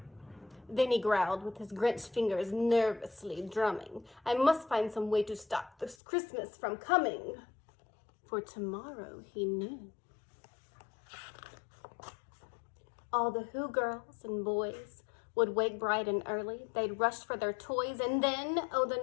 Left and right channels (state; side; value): drops out; right; at 6.0 s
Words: Then he growled with his Grinch fingers nervously drumming, "I must find some way to stop this Christmas from coming." For tomorrow, he knew. All the Who girls and boys would wake bright and early. They'd rush for their toys, and then, oh,